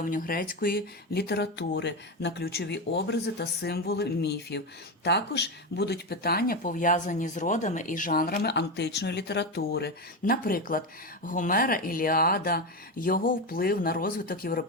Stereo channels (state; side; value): normal; both; correlation 0.14